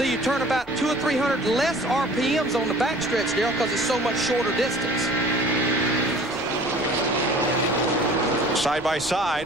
you turn about 200 or 300 less RPMs on the backstretch, Darrell, because it's so much shorter distance. Side by side,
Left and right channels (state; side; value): noise; left; rumble, 24 dB below the sound